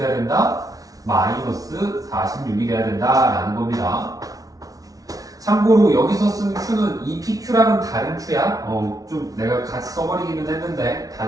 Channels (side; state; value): left; late; 0.18 ms